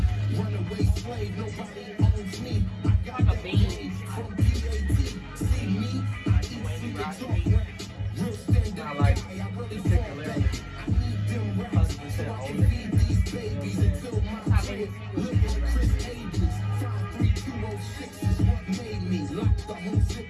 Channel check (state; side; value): identical; both; correlation 1.00